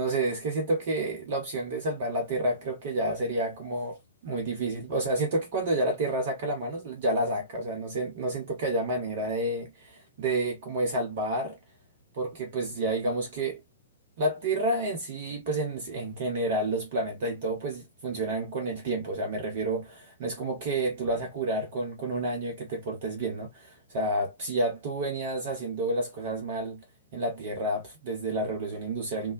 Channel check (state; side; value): inverted; both; correlation -0.34